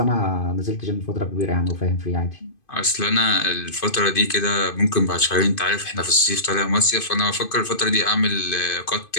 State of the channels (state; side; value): late; right; 2.5 ms